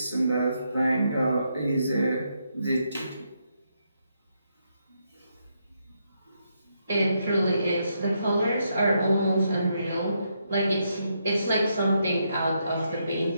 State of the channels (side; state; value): both; inverted; correlation -0.79